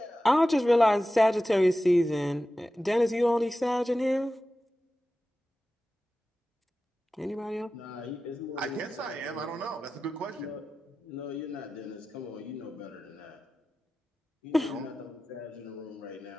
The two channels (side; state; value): both; normal; correlation 0.94